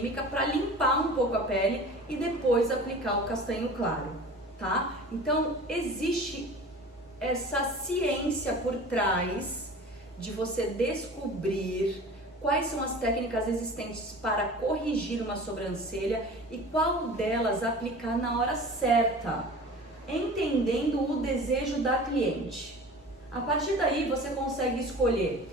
para limpar um pouco a pele e depois aplicar o castanho claro, tá? Então, existe essa ciência por trás de você descobrir quais são as técnicas existentes para corrigir uma sobrancelha e qual delas aplicar na hora certa, entendendo o desejo da cliente. A partir daí você consegue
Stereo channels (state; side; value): normal; both; correlation 0.40